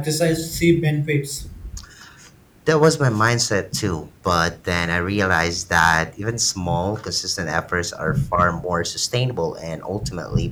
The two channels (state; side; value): identical; both; correlation 1.00